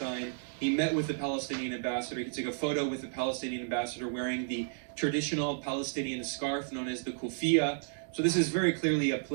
He met with the Palestinian ambassador. He took a photo with the Palestinian ambassador wearing the traditional Palestinian scarf known as the kufiya. So this is very clearly a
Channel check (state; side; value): silent; left; digital silence